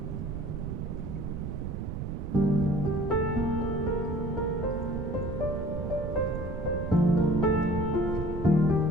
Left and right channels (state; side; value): noise; right; rumble, 4 dB below the sound